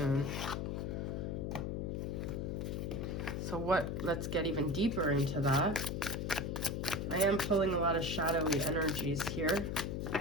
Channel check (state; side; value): noise; left; hum, 2 dB below the sound